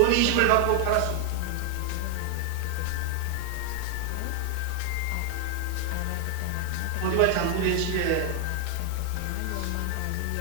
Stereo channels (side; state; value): both; different; correlation 0.00